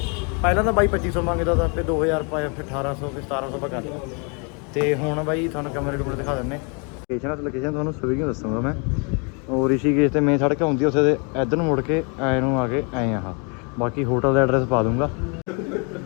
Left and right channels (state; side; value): quieter; right; 35.0 dB